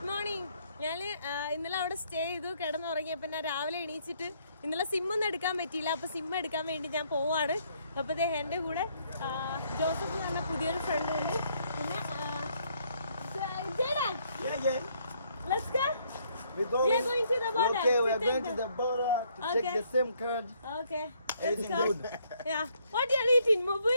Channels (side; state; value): both; inverted; correlation -0.69